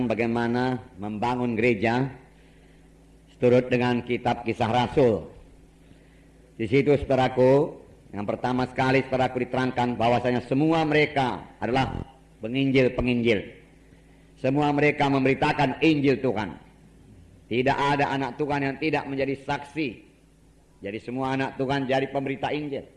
bagaimana membangun gereja seturut dengan kitab Kisah Rasul. Di situ, saudaraku, yang pertama sekali saudaraku diterangkan bahwasanya semua mereka adalah penginjil-penginjil. Semua mereka memberitakan Injil Tuhan. Tidak ada anak Tuhan yang tidak menjadi saksi. Jadi semua anak Tuhan jadi pemberita Injil.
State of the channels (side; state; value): both; identical; correlation 1.00